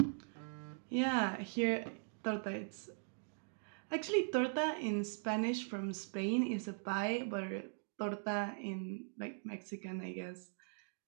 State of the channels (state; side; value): silent; left; digital silence